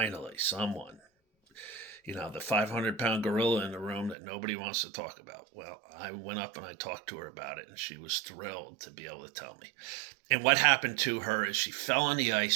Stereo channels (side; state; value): left; drops out; at 4.2 s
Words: someone. You know, the 500-pound gorilla in the room that nobody wants to talk about." Well, I went up and I talked to her about it, and she was thrilled to be able to tell me. And what happened to her is she fell on the ice.